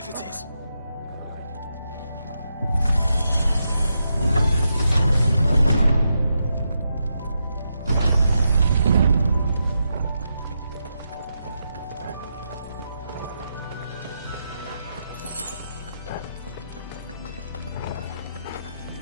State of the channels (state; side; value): inverted; both; correlation -0.84